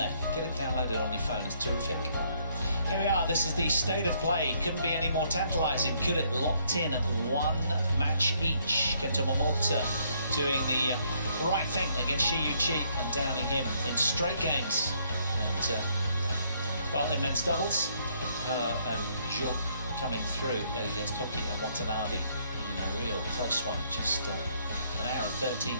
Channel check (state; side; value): inverted; both; correlation -0.69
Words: Get it downloaded on your phone, it's terrific. Here we are, this is the state of play. Couldn't be any more tantalising, could it? Locked in at one match each. Kanta Tsuneyama doing the right thing against Shi Feng and downing him in straight games. And, well, in men's doubles, and Jo coming through against Hoki and Watanabe in a real close one. Just an hour and